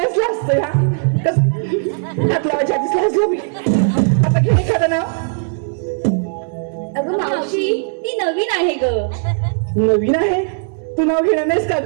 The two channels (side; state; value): left; silent; 63 dB below the other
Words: लाजतं ह्या कस हात लावायच्या आधीच लाजलो मी आता घे एखादं नाव अगं मावशी ती नवीन आहे ग नवीन आहे तू नाव घेणार नाहीस का